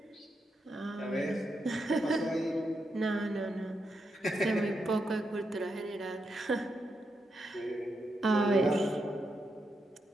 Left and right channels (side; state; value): both; normal; correlation 0.83